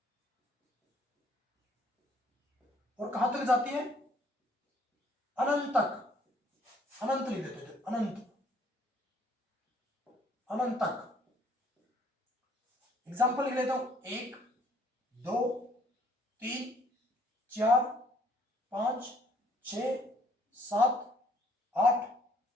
और कहां तक जाती है, अनंत तक, अनंत लिख देते थे, अनंत, अनंत तक। एग्जाम्पल लिख लेता हूं, 1 2 3 4 5 6 7 8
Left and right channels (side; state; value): both; normal; correlation 0.62